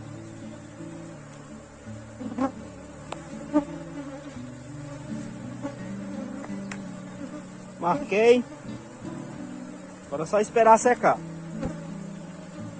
Marquei. Agora é só esperar secar.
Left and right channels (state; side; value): identical; both; correlation 1.00